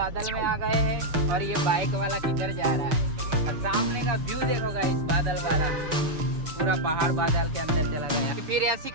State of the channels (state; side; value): late; left; 6.7 ms